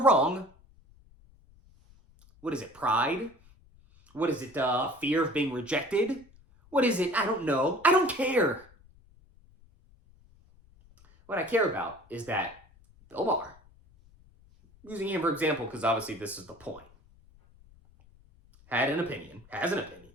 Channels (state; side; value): noise; left; rumble, 27 dB below the sound